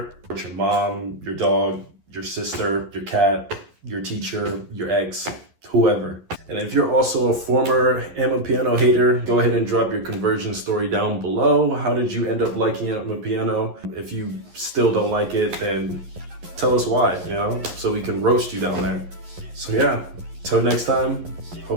with your mom, your dog, your sister, your cat, your teacher, your ex, whoever. And if you're also a former Amapiano hater, go ahead and drop your conversion story down below. How did you end up liking Amapiano? If you still don't like it, then tell us why, you know, so we can roast you down there. So yeah, till next time,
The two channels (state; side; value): late; left; 11 ms